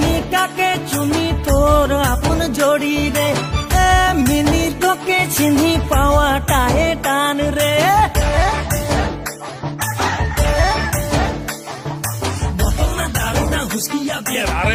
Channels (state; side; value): identical; both; correlation 1.00